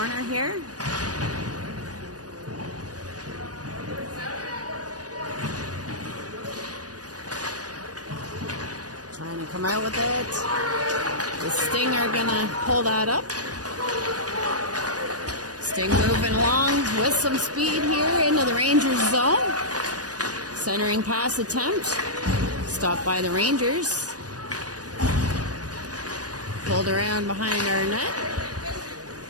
here. Trying to come out with it. The Sting are gonna pull that up. Sting moving along with some speed here into the Rangers zone. Centering pass attempt. Stopped by the Rangers. Pulled around behind our net.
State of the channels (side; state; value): left; late; 0.68 ms